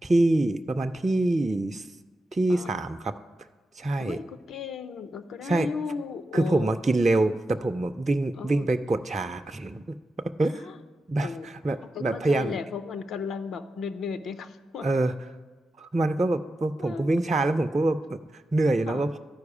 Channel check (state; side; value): normal; both; correlation 0.90